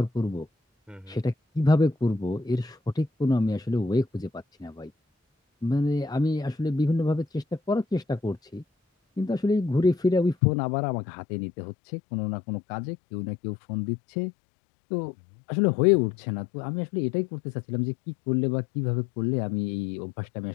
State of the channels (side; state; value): right; drops out; at 10.4 s